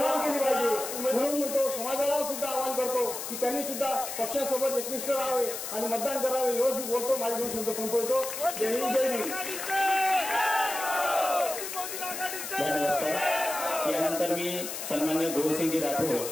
केली पाहिजे. म्हणून म्हणतो समाजाला सुद्धा आवाहन करतो की त्यांनी सुद्धा पक्षासोबत एकनिष्ठ राहावे आणि मतदान करावे. एवढं बोलतो. माझे दोन शब्द संपवतो. जय हिंद, जय हिंद. यानंतर मी सन्मान्य गौरसिंगजी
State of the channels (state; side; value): noise; left; hiss, 6 dB below the sound